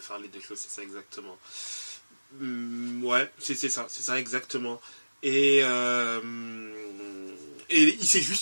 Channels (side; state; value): both; inverted; correlation -1.00